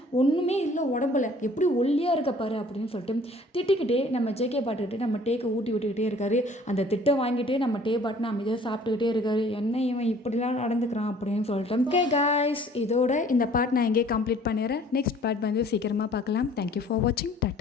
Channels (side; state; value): both; normal; correlation 0.53